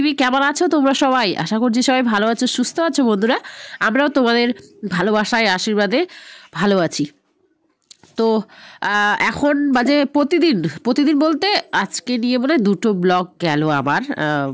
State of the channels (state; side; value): identical; both; correlation 1.00